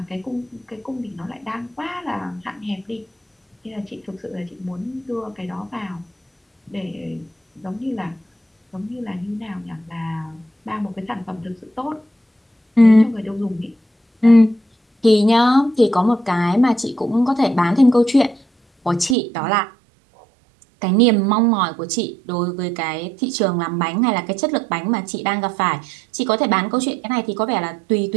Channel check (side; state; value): left; drops out; at 19.2 s